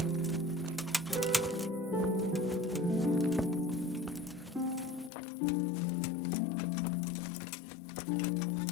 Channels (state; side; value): drops out; right; at 5.1 s